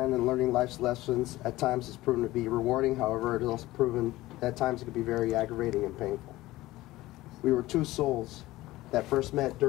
and learning life's lessons at times has proven to be rewarding. However, it has also proven that at times it can be very aggravating and painful. We were two souls that first met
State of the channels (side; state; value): right; quieter; 17.6 dB